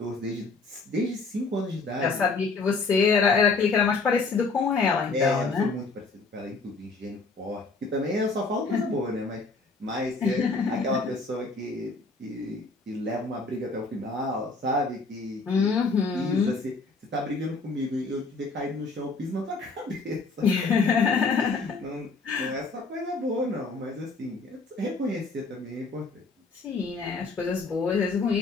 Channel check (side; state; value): right; quieter; 4.0 dB